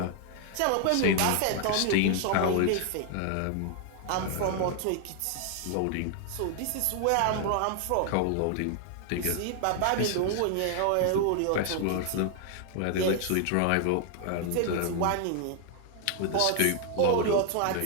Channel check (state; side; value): different; both; correlation 0.00